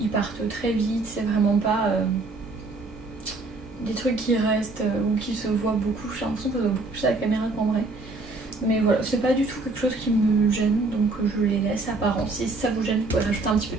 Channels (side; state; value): left; quieter; 3.3 dB